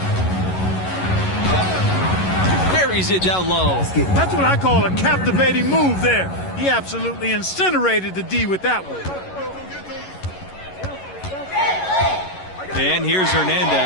Buries it down low. That's what I call a captivating move there. He absolutely incinerated the D with that one. And here's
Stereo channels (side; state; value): right; late; 11 ms